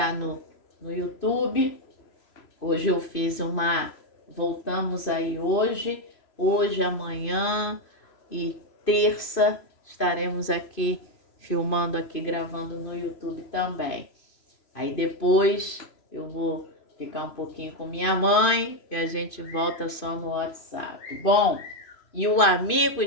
no YouTube, hoje eu fiz voltamos aí hoje, amanhã e terça estaremos aqui filmando aqui, gravando no YouTube também. Aí depois eu vou ficar um pouquinho com minha mãe e a gente volta só no WhatsApp. Bom, e o amigo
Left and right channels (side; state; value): right; late; 3.0 ms